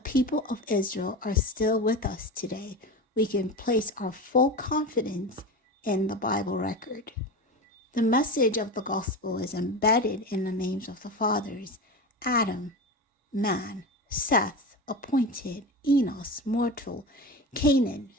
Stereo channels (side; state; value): both; normal; correlation 0.26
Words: of Israel are still with us today. we can place our full confidence in the Bible record. The message of the gospel is embedded in the names of the fathers: Adam, man; Seth, appointed; Enos, mortal; Canaan,